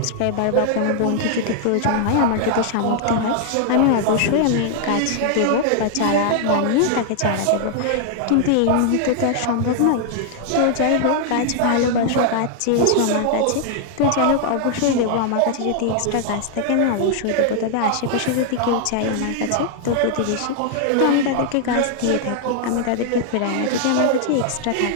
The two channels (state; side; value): different; both; correlation 0.00